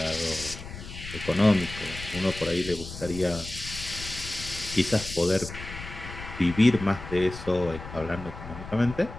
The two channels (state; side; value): noise; left; rumble, 11 dB below the sound